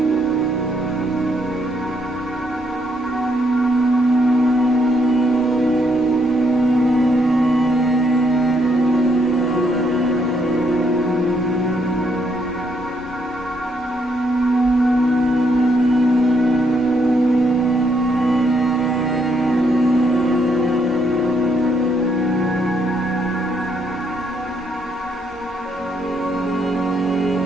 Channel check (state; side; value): normal; both; correlation 0.74